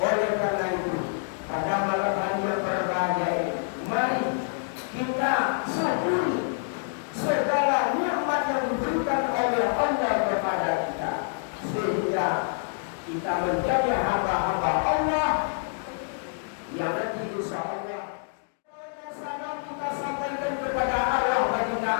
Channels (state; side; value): silent; right; digital silence